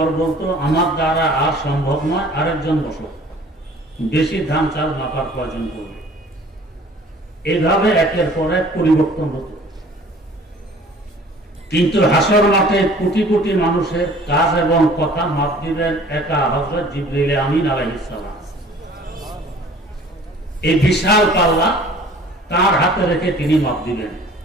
বলতো, আমার দ্বারা আর সম্ভব নয়, আরেকজন বসো, বেশি ধান চাল মাপার প্রয়োজন পড়বে। এভাবে একের পর এক পরিবর্তন হতো। কিন্তু হাসর মাঠে কোটি কোটি মানুষের কাজ এবং কথা মাপ দিবেন একা হযরত জিবরিল আমিন আলাইহিস সালাম। এই বিশাল পাল্লা তার হাতে রেখে তিনি মাপ দিবেন।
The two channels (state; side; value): normal; both; correlation 0.50